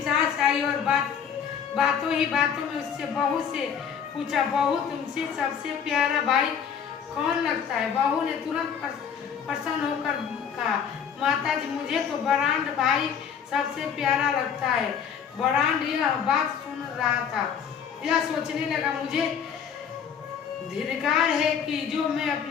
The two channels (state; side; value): quieter; right; 7.5 dB